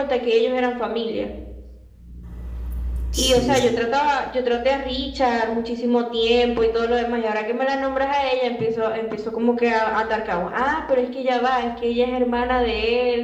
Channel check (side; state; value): both; identical; correlation 1.00